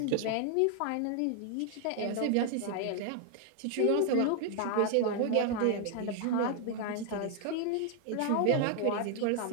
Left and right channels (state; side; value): different; both; correlation 0.00